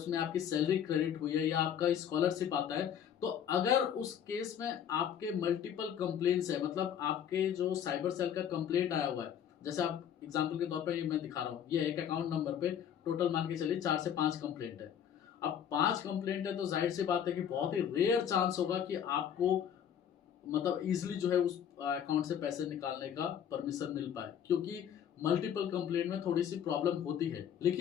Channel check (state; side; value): quieter; right; 9.0 dB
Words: आपकी सैलरी क्रेडिट हुई है या आपका स्कॉलरशिप आता है, तो अगर उस केस में आपके मल्टीपल कंप्लेंट्स है, मतलब आपके जो साइबर सेल का कंप्लेंट आया हुआ है, जैसे आप एग्जांपल के तौर पे ये मैं दिखा रहा हूँ, ये एक अकाउंट नंबर पे टोटल मान के चलिए 4 से 5 कंप्लेंट है। अब 5 कंप्लेंट है तो जाहिर सी बात है कि बहुत ही रेयर चांस होगा कि आपको मतलब इजिली जो है उस अकाउंट से पैसे निकालने का परमिशन मिल पाए, क्योंकि मल्टीपल कंप्लेंट में थोड़ी सी प्रॉब्लम होती है।